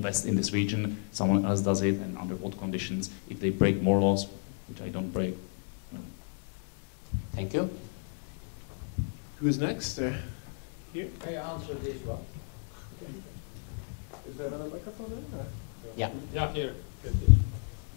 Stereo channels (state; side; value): silent; right; 56 dB below the other